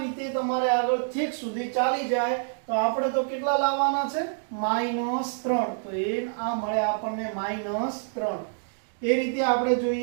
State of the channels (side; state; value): left; silent; digital silence